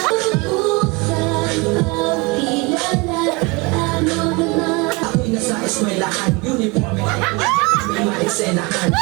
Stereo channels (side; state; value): left; quieter; 27.1 dB